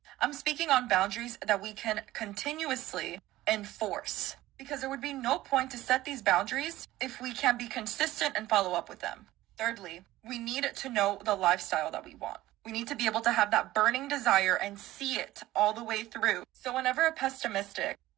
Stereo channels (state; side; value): quieter; left; 16.2 dB